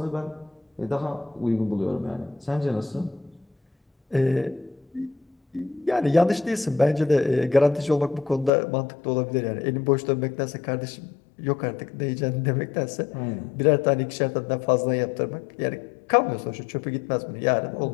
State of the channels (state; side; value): drops out; right; at 8.5 s